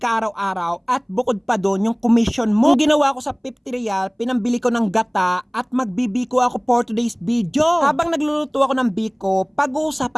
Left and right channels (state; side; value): identical; both; correlation 1.00